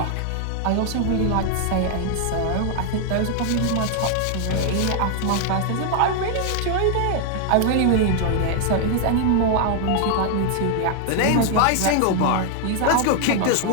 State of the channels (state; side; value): different; both; correlation 0.00